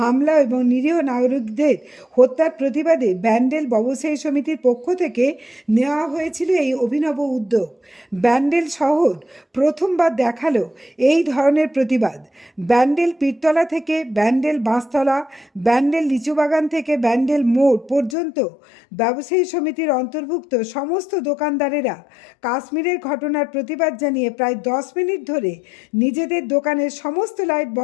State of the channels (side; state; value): right; drops out; at 18.2 s